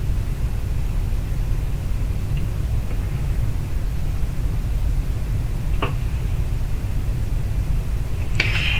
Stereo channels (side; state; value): both; identical; correlation 1.00